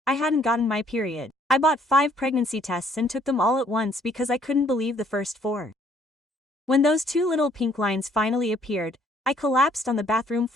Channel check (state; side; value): normal; both; correlation 0.64